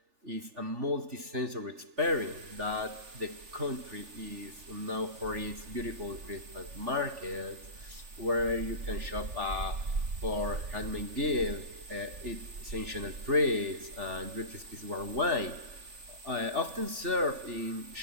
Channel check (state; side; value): late; left; 3.4 ms